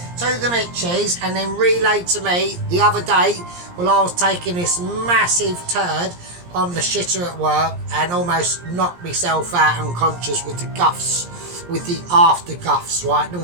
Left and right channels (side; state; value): left; late; 17 ms